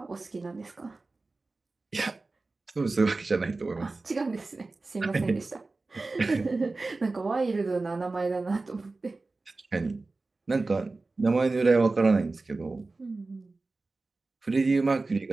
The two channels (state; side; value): quieter; left; 3.5 dB